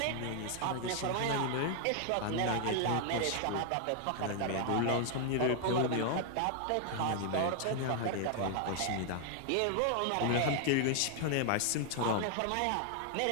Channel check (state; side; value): different; both; correlation 0.00